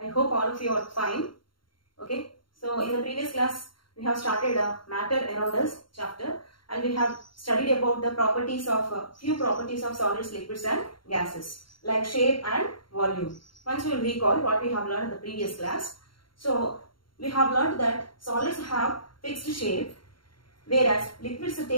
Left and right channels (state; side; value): late; right; 0.73 ms